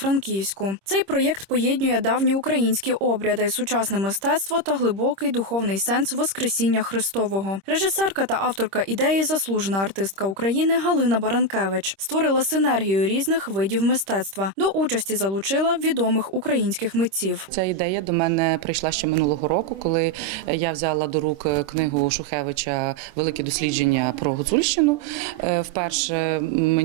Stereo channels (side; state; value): left; late; 26 ms